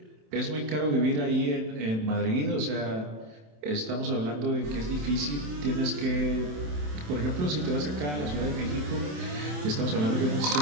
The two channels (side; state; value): left; late; 27 ms